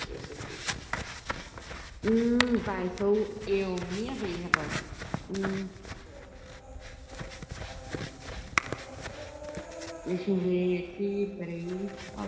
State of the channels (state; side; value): identical; both; correlation 1.00